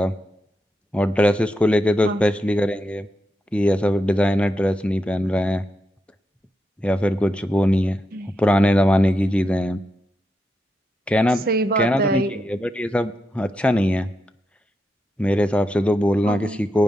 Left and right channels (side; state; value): both; normal; correlation 0.86